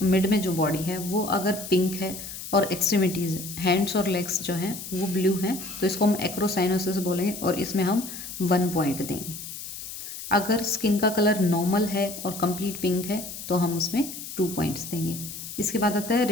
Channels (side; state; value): left; noise; hiss, 10 dB below the sound